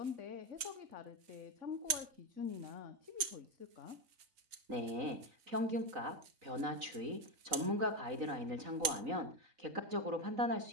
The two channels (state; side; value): late; left; 4.5 ms